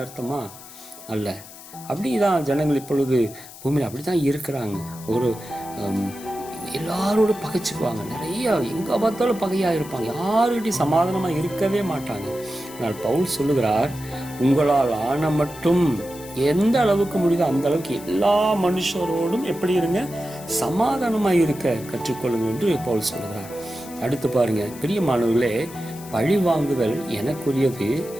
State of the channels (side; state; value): left; noise; hiss, 17 dB below the sound